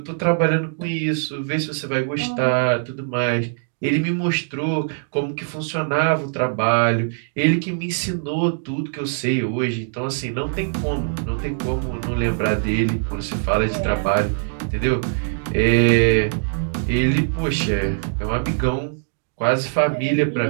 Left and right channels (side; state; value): left; silent; digital silence